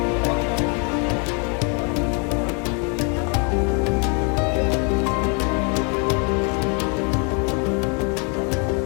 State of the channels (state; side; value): quieter; right; 36.1 dB